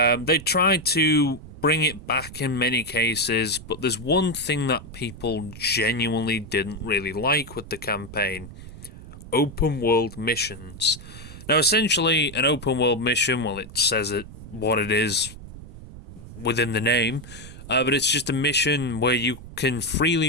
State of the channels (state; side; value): noise; right; rumble, 15 dB below the sound